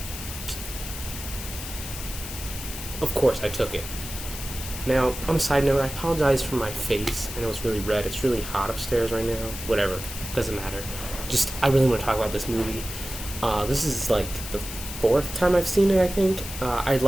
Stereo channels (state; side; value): noise; left; hiss, 9 dB below the sound